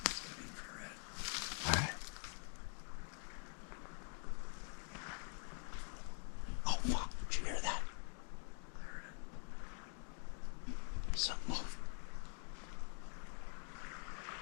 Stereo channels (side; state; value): right; quieter; 39.8 dB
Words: infrared. Alright. Oh fuck, did you hear that? I heard it. Something moved.